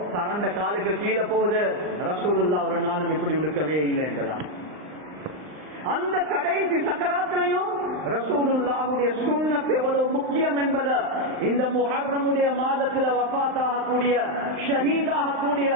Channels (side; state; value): left; late; 39 ms